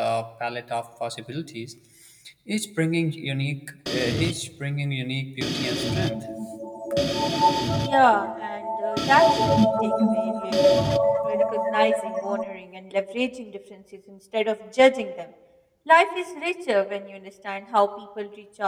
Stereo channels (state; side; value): identical; both; correlation 1.00